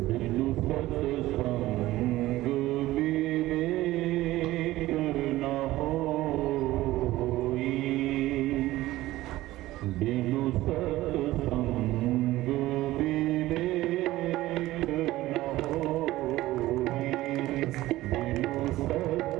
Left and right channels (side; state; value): left; quieter; 16.7 dB